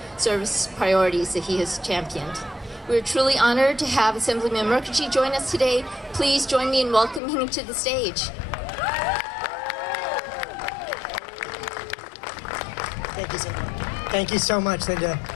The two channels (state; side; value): drops out; right; at 7.2 s